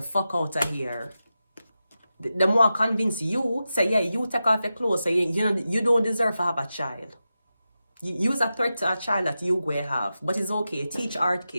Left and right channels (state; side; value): inverted; both; correlation -0.92